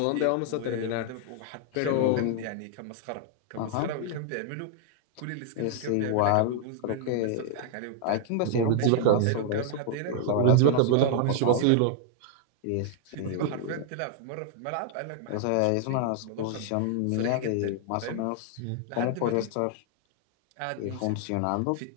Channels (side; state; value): both; different; correlation 0.00